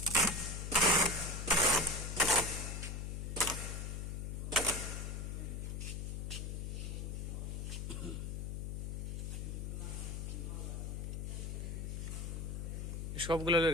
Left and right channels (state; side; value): noise; left; hum, 4 dB below the sound